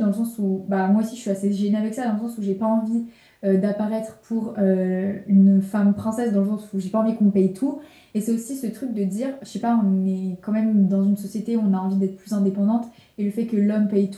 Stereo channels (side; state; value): both; identical; correlation 1.00